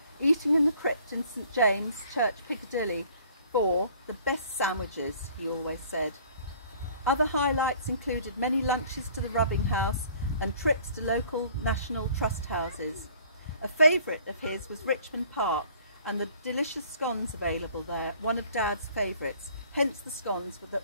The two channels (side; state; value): both; inverted; correlation -0.55